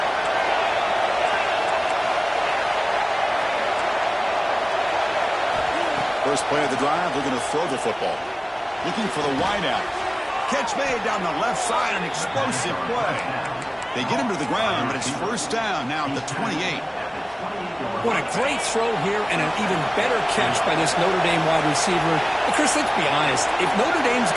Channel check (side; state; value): both; identical; correlation 1.00